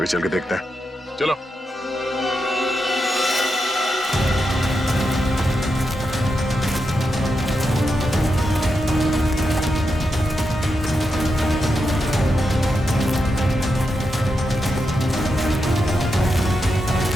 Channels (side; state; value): both; normal; correlation 0.86